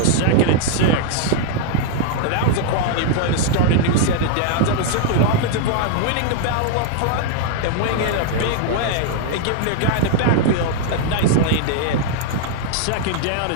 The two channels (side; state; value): both; different; correlation 0.00